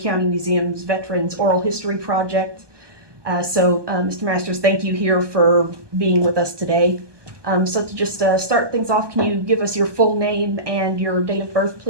Museum's Veterans Oral History Project. Mr. Masters, thank you here for being with us today. So to just start things off, can you give us your full name and your date of birth,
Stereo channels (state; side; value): late; left; 1.2 ms